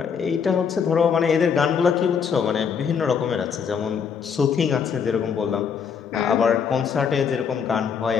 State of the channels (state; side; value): quieter; right; 6.7 dB